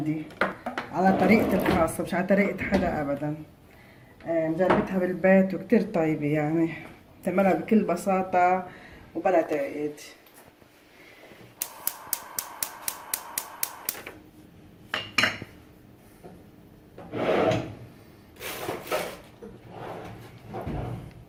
على طريقتي الخاصة، مش على طريقة حدا أبدا. مجربتها بالبيت وكتير طيبة، يعني بتعملها بكل بساطة وبلا تعقيد.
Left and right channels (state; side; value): identical; both; correlation 1.00